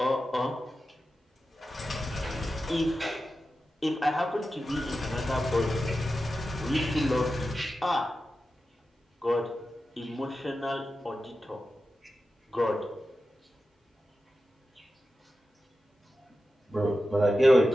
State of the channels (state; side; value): normal; both; correlation 0.92